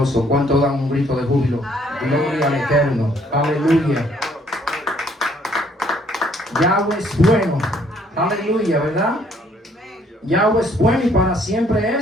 ¿Cuánto dan un grito de júbilo? Gloria al Eterno. Aleluya. Yahweh es bueno. Aleluya, ¿verdad? Yahweh es bueno y para siempre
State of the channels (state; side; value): normal; both; correlation 0.64